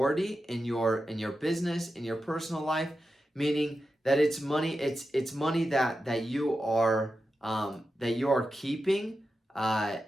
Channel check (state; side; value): normal; both; correlation 0.90